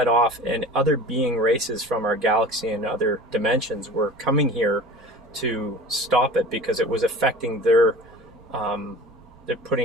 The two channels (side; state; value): right; noise; rumble, 27 dB below the sound